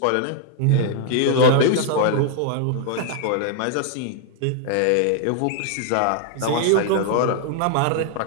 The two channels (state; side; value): different; both; correlation 0.00